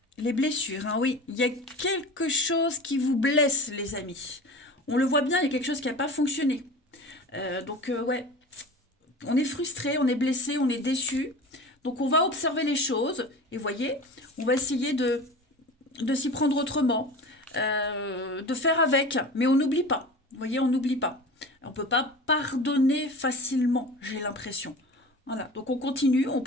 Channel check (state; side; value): normal; both; correlation 0.35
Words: les blessures. Hein, oui, il y a quelque chose qui vous blesse, les amis. On le voit bien, il y a quelque chose qui n'a pas fonctionné. Ouais, on est frustré, on est blessé, on est déçu. Donc, on va observer les choses. Et voyez, on va essayer de s'y prendre autrement, de faire avec. Mais on n'oublie pas. Vous voyez, on n'oublie pas. On ne peut pas pardonner facilement, j'ai l'impression. Voilà, donc on continue, on